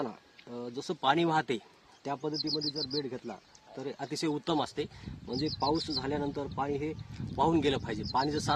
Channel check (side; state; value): both; identical; correlation 1.00